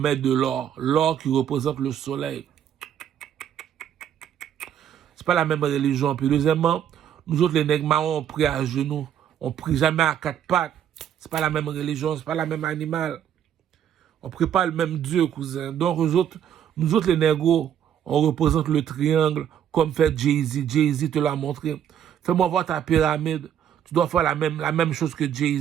de l'or. L'or qui représente le soleil. C'est pas la même religion. Puis deuxièmement, nous autres, les nègres marrons, on prie à genoux. On prie jamais à quatre pattes. C'est pas la même religion, c'est pas la même animal. On prie pas le même Dieu, cousin. Donc, nous autres, les négros, on représente le triangle comme fait Jay-Z. Jay-Z te l'a montré. Fais-moi voir ta pyramide. Tu dois faire la même chose que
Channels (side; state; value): left; quieter; 9.6 dB